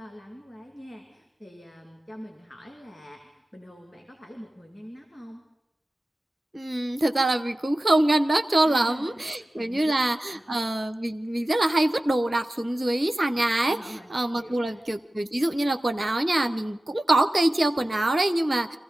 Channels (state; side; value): normal; both; correlation 0.95